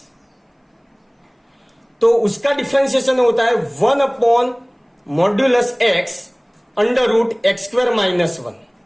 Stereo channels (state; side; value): identical; both; correlation 1.00